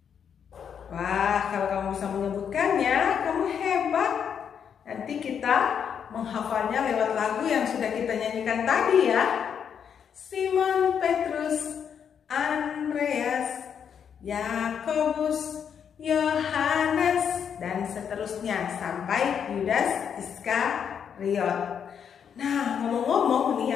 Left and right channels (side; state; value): right; quieter; 7.7 dB